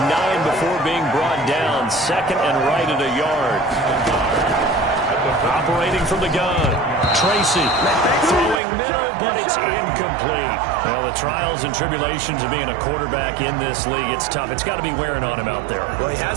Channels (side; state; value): left; drops out; at 8.6 s